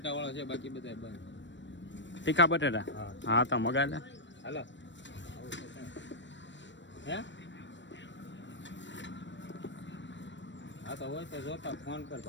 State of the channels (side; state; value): right; late; 0.53 ms